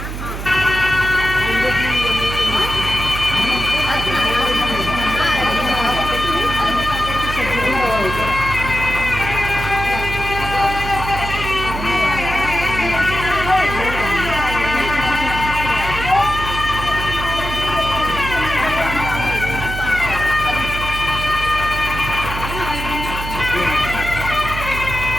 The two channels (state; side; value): noise; right; hum, 7 dB below the sound